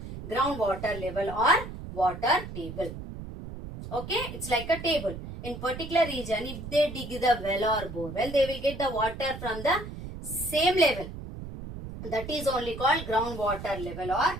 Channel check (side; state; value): right; noise; rumble, 10 dB below the sound